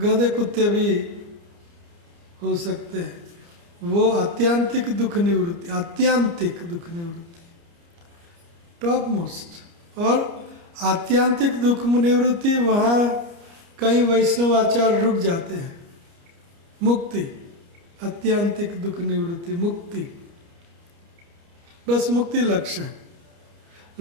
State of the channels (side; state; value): left; late; 29 ms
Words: कुत्ते भी हो सकते हैं। वो आत्यांतिक दुख निवृत्ति, आत्यांतिक दुख निवृत्ति, टॉप मोस्ट। और आत्यांतिक दुख निवृत्ति, वहाँ कई वैष्णवाचार्य रुक जाते हैं। मुक्ति, आत्यांतिक दुख निवृत्ति, मुक्ति, बस मुक्ति लक्ष्य है।